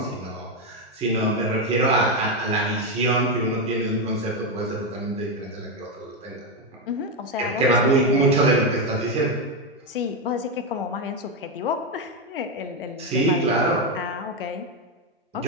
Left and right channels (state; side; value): normal; both; correlation 0.07